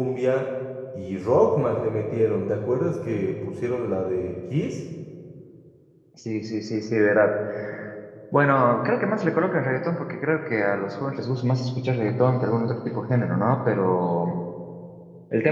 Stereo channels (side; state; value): both; identical; correlation 1.00